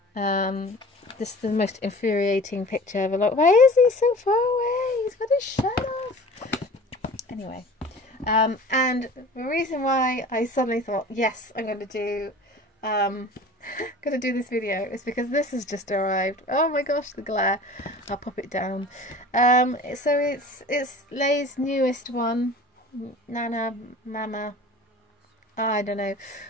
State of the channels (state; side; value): normal; both; correlation 0.41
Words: This is the most infuriating picture ever. Like, why is he so far away? He's got his shirt off. Anyway, and the reason why I suddenly thought, yes, I'm going to do this video is because this has just arrived. Oh my gosh, the glare. I'll pop it down. So it's Lay's newest one, Nana Mama. I don't know